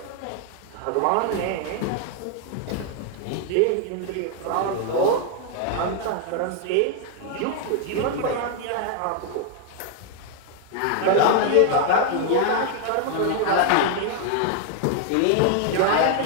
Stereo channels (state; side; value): different; both; correlation 0.00